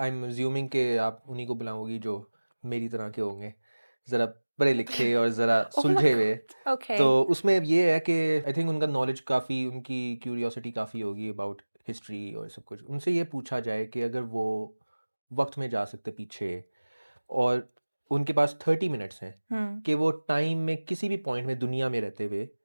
एम अज्यूमिंग कि आप उन्हीं को बुलाओगी जो मेरी तरह के होंगे, ज़रा पढ़े लिखे और ज़रा ओह माय सुलझे हुए। गॉड ओके तो उसमें ये है कि आई थिंक उनका नॉलेज काफ़ी, उनकी क्यूरियोसिटी काफ़ी होगी अबाउट हिस्ट्री और सब कुछ। उनसे ये पूछा जाए कि अगर वो वक्त में जा सकते पीछे और उनके पास 30 मिनट्स हैं कि वो टाइम में किसी भी पॉइंट में दुनिया में रहते हुए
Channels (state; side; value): inverted; both; correlation -1.00